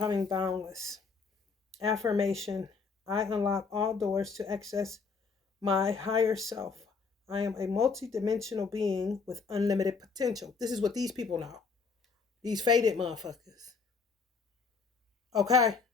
boundless. Affirmation: I unlock all doors to access my higher self. I am a multidimensional being with unlimited potential. This is what these people know. These faded motherfuckers. Okay?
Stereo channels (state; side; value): quieter; right; 4.9 dB